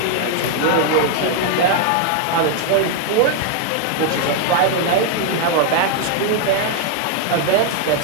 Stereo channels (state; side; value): different; both; correlation 0.00